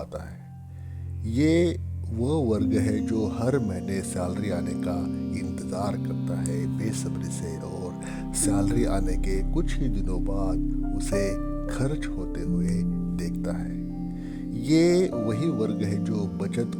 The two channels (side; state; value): both; identical; correlation 1.00